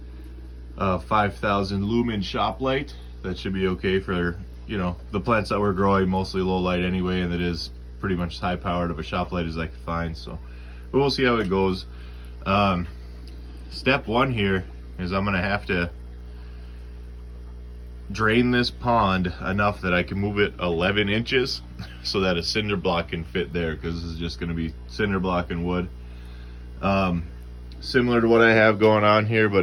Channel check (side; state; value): both; identical; correlation 1.00